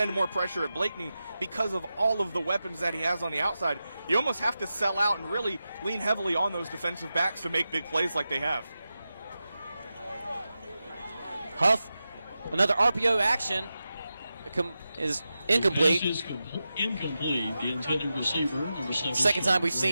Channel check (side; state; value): both; inverted; correlation -0.92